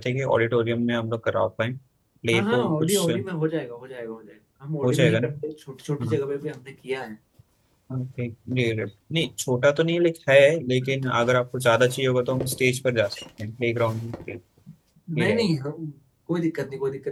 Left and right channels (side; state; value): both; identical; correlation 1.00